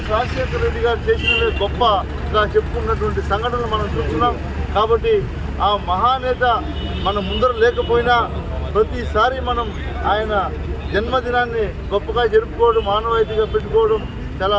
రాజశేఖర రెడ్డి గారు చేసినవే గొప్పగా చెప్పుకున్నటువంటి సంఘటనలు మనం చూస్తున్నాం. కాబట్టి ఆ మహానేత మన ముందర లేకపోయినా ప్రతిసారి మనం ఆయన జన్మదినాన్ని గొప్పగా జరుపుకోవడం, మానవాయితీగా పెట్టుకోవడం చాలా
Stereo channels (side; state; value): both; identical; correlation 1.00